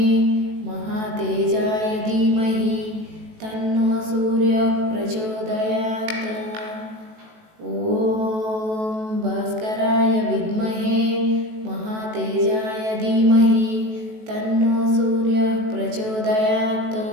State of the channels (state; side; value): late; left; 18 ms